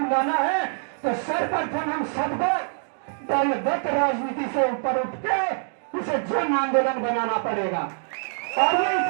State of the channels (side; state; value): left; silent; digital silence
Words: लाना है, तो सर्वप्रथम हम सबको दलगत राजनीति से ऊपर उठ के इसे जन आंदोलन बनाना पड़ेगा। और